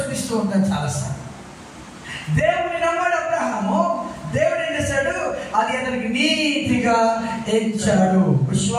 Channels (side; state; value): both; identical; correlation 1.00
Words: ఉంటాను చాలాసార్లు. దేవుని నమ్మాడు అబ్రహాము. దేవుడు ఏం చేశాడు? అది అతనికి నీతిగా ఎంచాడు.